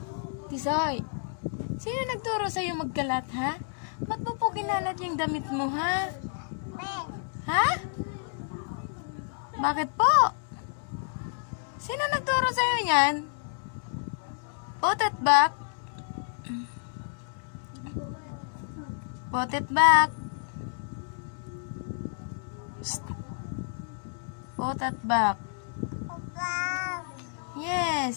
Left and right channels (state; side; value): silent; right; 58 dB below the other